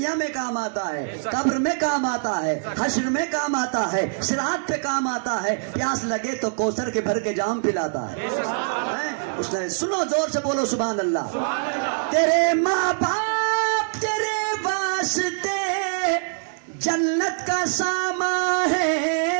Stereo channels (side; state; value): left; silent; digital silence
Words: میں کام آتا ہے، قبر میں کام آتا ہے، حشر میں کام آتا ہے، صراط پہ کام آتا ہے، پیاس لگے تو کوثر کے بھر کے جام پلاتا ہے، اس نے سنو زور سے بولو سبحان اللہ، تیرے ماں باپ تیرے واسطے جنت کا سامان